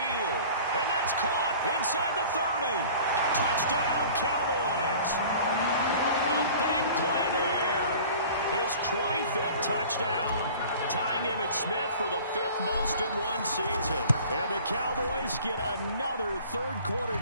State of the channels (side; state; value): both; inverted; correlation -0.45